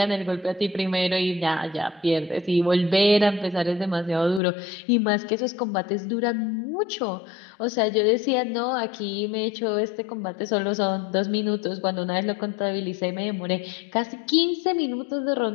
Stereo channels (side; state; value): right; drops out; at 4.4 s